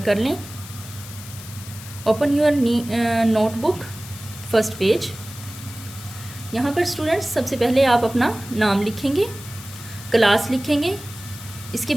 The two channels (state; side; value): noise; left; hiss, 15 dB below the sound